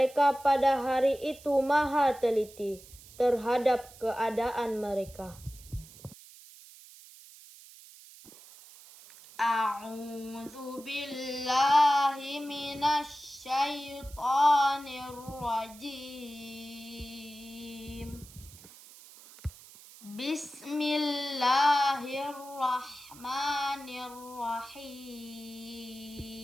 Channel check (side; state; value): right; noise; hiss, 20 dB below the sound